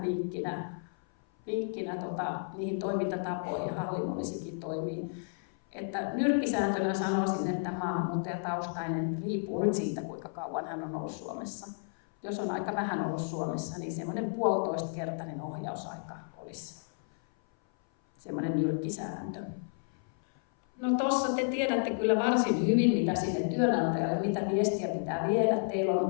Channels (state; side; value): silent; right; 56 dB below the other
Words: vinkkinä niihin toimintatapoihin ja hallinnollisikin toimiin. Että nyrkkisääntönä sanoisin, että maahanmuuttajataustainen riippuu nyt siitä, kuinka kauan hän on ollut Suomessa. Jos on aika vähän ollut Suomessa, niin semmoinen 1,5-kertainen ohjausaika olisi semmoinen nyrkkisääntö. No tuossa te tiedätte kyllä varsin hyvin, mitä sinne työnantajalle, mitä viestiä pitää viedä. Teillä